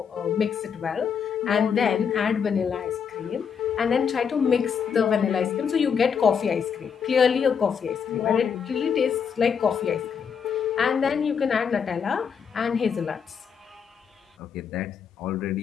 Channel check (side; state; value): right; quieter; 6.9 dB